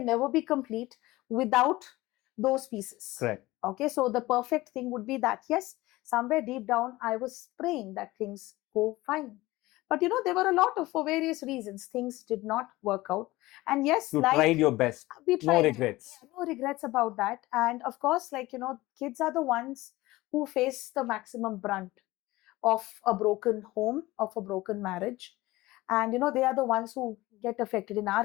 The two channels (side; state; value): right; quieter; 18.9 dB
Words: never be complete without those pieces. Correct. Okay, so the perfect thing would be that, yes, somewhere deep down, I was praying that things go fine. But there were a lot of, for various reasons, things did not work out. And yes, You like, tried your best. we No tried. regrets. Yeah, no regrets about that. And of course, like, kids are the ones who face the maximum brunt of a broken home, of a broken marriage. And they are the ones who get affected. In our